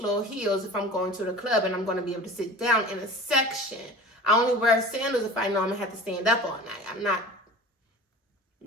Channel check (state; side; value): normal; both; correlation 0.38